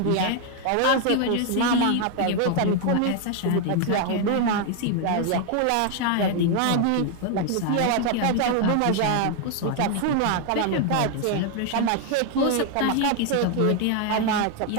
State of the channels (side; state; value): both; different; correlation 0.00